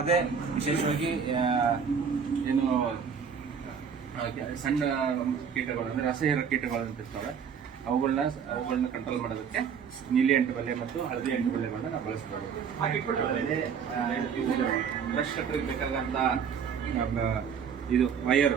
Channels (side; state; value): left; quieter; 6.9 dB